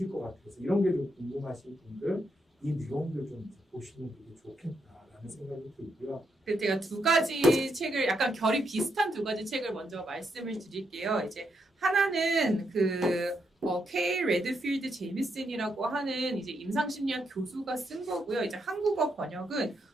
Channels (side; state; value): both; normal; correlation 0.80